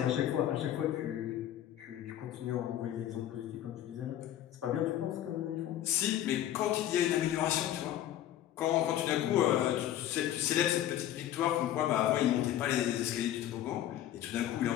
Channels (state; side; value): quieter; right; 12.1 dB